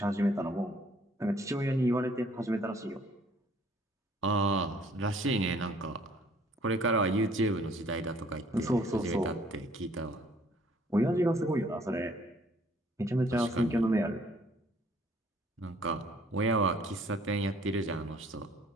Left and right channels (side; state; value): both; normal; correlation 0.60